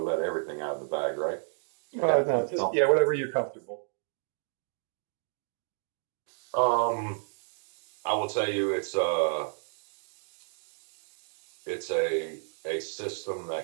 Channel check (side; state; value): left; silent; digital silence